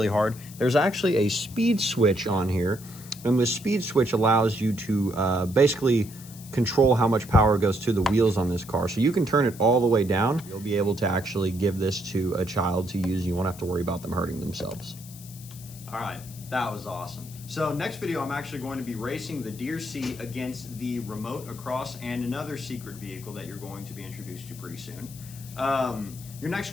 hard, there's actually a speed switch on here. And the speed switch allows you to basically control how much power goes to the wheels on this car. So you can turn it all the way down. You'll be able to actually give this to a child to use. You won't have to worry about them hurting themselves. All right, that was awesome. So next video, I'm actually going to be racing the DEERC against the remote across and another secret vehicle that you're going to be introduced to pretty soon. Your next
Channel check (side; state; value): left; noise; hiss, 18 dB below the sound